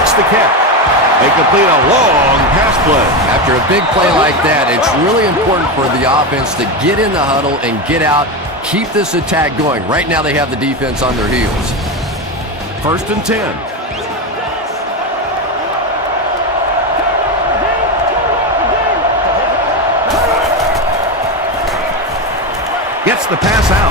the catch. They complete a long pass play. After a big play like that, it's really important for the offense to get in the huddle and get out, keep this attack going. Right now they have the defense on their heels. 1st and 10. Gets the pass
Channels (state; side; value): normal; both; correlation 0.15